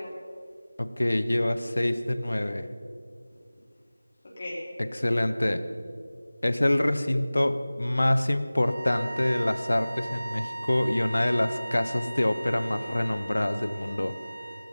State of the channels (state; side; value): inverted; both; correlation -0.99